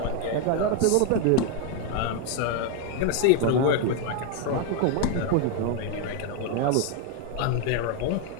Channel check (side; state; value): both; different; correlation 0.01